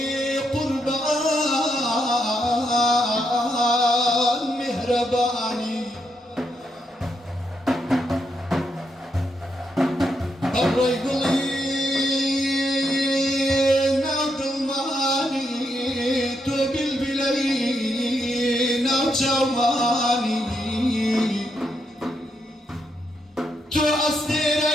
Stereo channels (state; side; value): normal; both; correlation 0.80